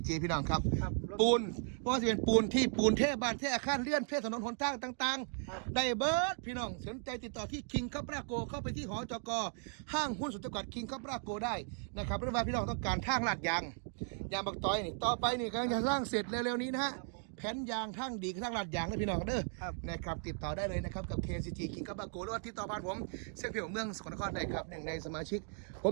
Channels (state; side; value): silent; left; 53 dB below the other